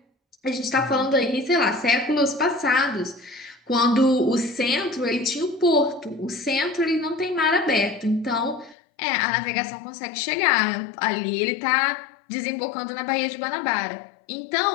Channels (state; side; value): drops out; right; at 8.8 s